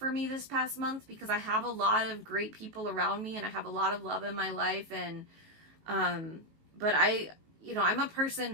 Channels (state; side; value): late; left; 19 ms